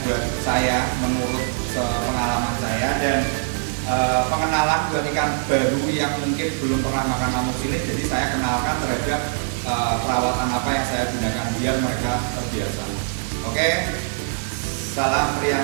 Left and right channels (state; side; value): silent; left; digital silence